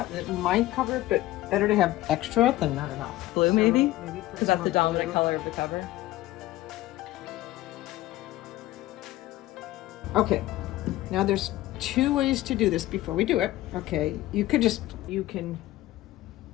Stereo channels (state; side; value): quieter; right; 16.3 dB